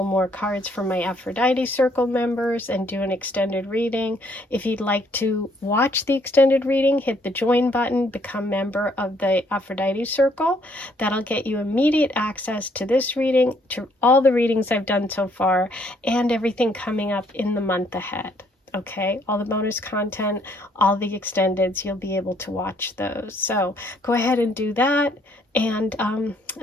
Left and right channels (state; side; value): normal; both; correlation 0.67